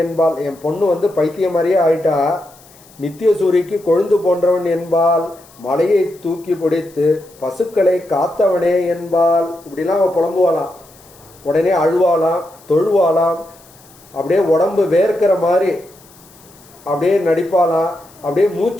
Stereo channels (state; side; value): noise; left; hiss, 26 dB below the sound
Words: என்பால். என் பொண்ணு பைத்தியம் மாதிரியே ஆயிட்டா, நித்திய சூரிக்கு கொழுந்து போன்றவன் என்பால். மலையை தூக்கி பிடித்து பசுக்களை காத்தவனே என்பால். இப்படிலாம் அவள் புலம்புவாளாம், உடனே அழுவாளாம், தொழுவாளாம், அப்படியே உடம்பு வேர்க்கிற மாதிரி அப்படியே நடிப்பாளாம், அப்படியே